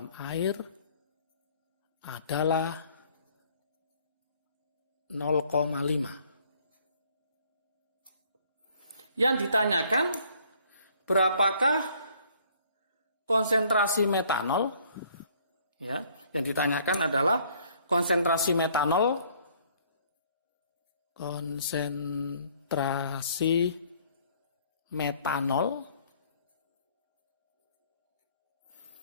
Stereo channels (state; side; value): inverted; both; correlation -0.60